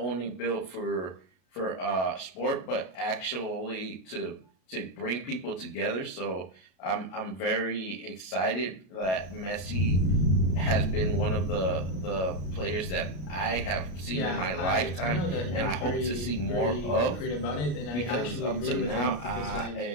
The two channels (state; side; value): late; right; 32 ms